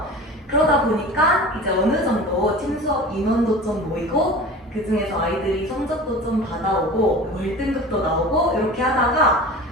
그러다 보니까 이제 어느 정도 팀 수업 인원도 좀 모이고, 그 중에서 아이들이 성적도 좀 받아오고 월등급도 나오고 이렇게 하다가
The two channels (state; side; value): normal; both; correlation 0.36